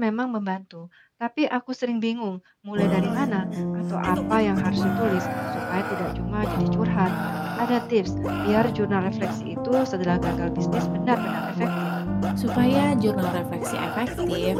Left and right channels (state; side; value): identical; both; correlation 1.00